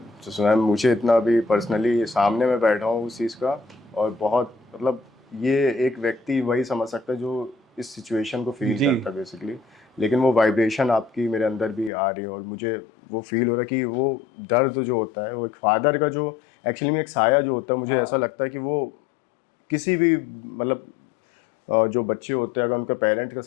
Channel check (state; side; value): drops out; right; at 11.9 s